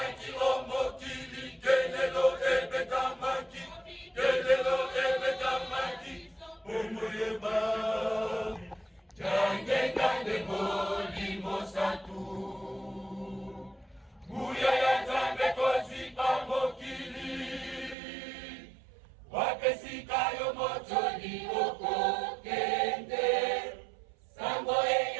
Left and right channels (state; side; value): drops out; left; at 17.9 s